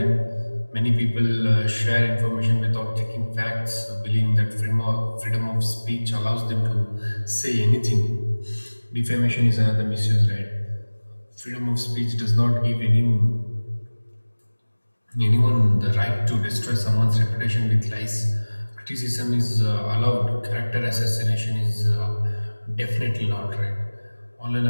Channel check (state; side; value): inverted; both; correlation -1.00